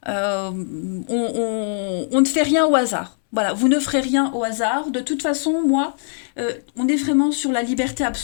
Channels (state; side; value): silent; right; 65 dB below the other